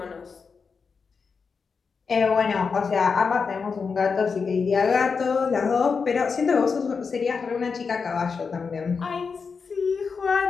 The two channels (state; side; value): quieter; right; 5.3 dB